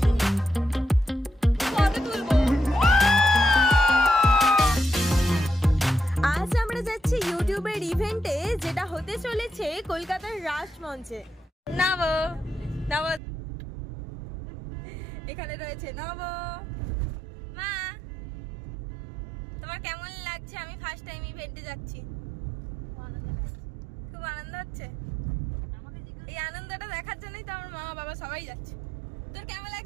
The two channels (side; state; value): left; drops out; at 13.2 s